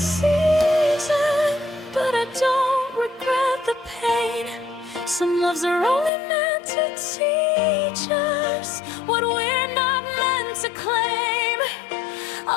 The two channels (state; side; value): drops out; right; at 6.1 s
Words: but I don't regret the pain. Some loves are only meant to teach us what we're not meant to claim.